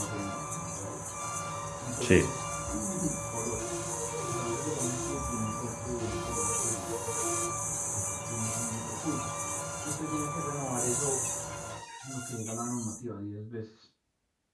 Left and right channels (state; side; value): identical; both; correlation 1.00